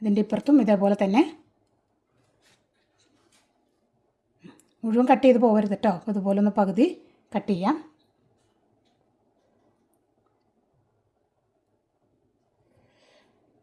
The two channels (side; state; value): both; identical; correlation 1.00